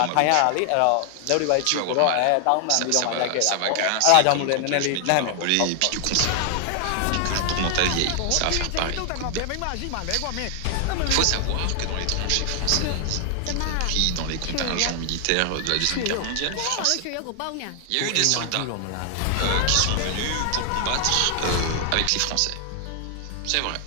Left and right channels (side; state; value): both; different; correlation 0.00